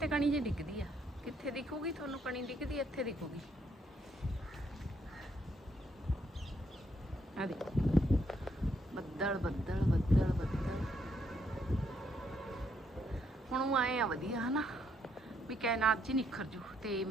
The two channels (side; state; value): both; normal; correlation 0.73